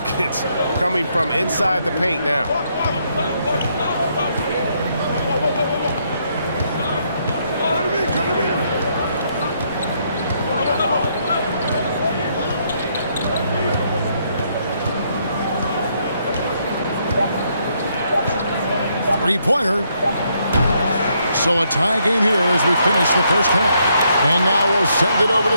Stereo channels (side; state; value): both; inverted; correlation -0.74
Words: coming from inside the paint now. Three-pointer. So a tie game here as we finish the first half. And now we'll send it over to